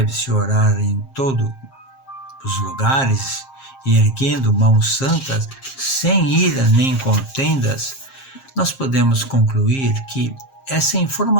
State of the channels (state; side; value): late; right; 7.5 ms